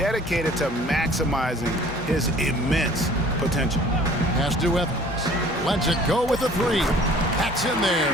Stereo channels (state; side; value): normal; both; correlation 0.51